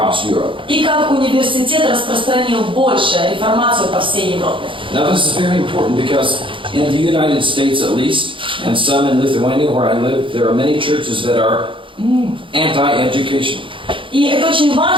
Europe. И как университет распространил больше реформацию по всей Европе. Now this is very important because in the United States at least, and some in Lithuania where I live, there are many churches that are anti-education. И это очень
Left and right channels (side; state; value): left; late; 0.25 ms